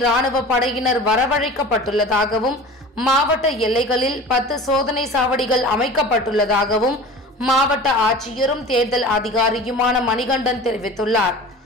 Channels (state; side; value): normal; both; correlation 0.38